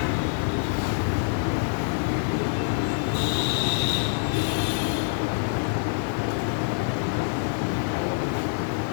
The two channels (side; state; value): right; silent; 61 dB below the other